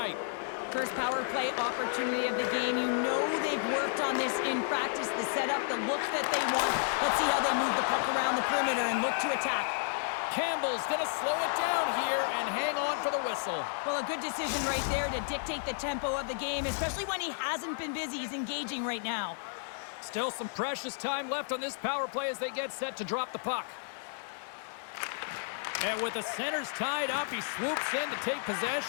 First power play opportunity of the game. You know they've worked on this in practice, the setup, the look that they want. Let's see how they move the puck around the perimeter and look to attack. Campbell's going to slow it down here and hang on for the whistle. Well, a good decision right there to dictate the tempo of the game, especially when he hasn't been busy. He's engaging right now. Still some precious time left on this power play as they get set to drop the puck. And with the centers tied up, he swoops in to take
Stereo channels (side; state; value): right; silent; 56 dB below the other